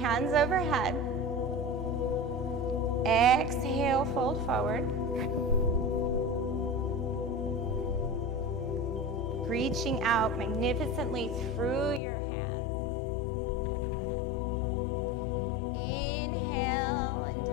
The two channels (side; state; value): right; drops out; at 12.0 s